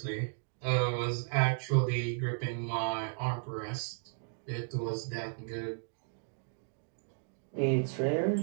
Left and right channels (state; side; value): silent; left; 55 dB below the other